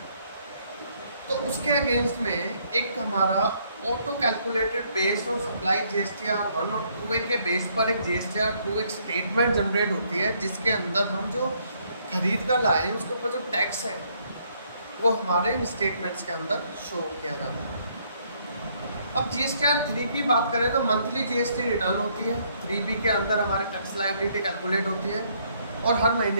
तो उसके अगेंस्ट में एक हमारा auto calculated based on supply GSTR1 और 2A के बेस पर एक GSTR2 एक स्टेटमेंट जनरेट होती है, जिसके अंदर हम जो खरीद कर लाए हैं उसके ऊपर जो टैक्स है वो हमारे इन स्टेटमेंट्स के अंदर शो किया जाता है। अब GSTR3 की बात करें तो मंथली GST रिटर्न होती है, 3B के अंदर हमारे टैक्स लायबिलिटी कैलकुलेट होती है और हर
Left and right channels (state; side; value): inverted; both; correlation -0.69